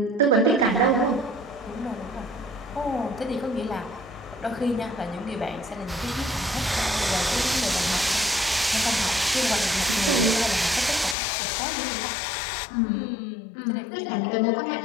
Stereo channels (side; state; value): right; drops out; at 11.2 s